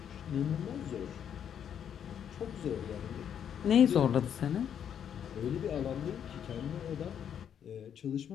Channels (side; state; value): right; quieter; 8.7 dB